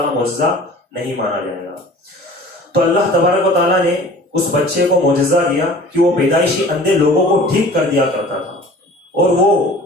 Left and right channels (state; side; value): normal; both; correlation 0.45